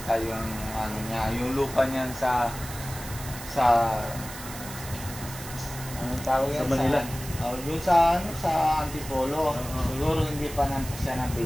yung yung lupa niyan sa tawag yan sa Manila. Yung sa Antipolo. Siguro hindi pa naman siya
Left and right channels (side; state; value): right; noise; hiss, 12 dB below the sound